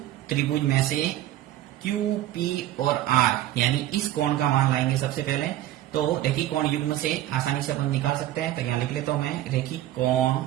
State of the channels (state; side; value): quieter; left; 13.5 dB